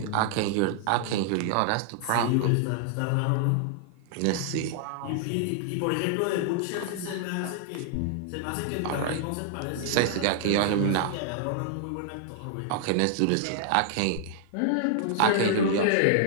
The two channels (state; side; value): different; both; correlation 0.00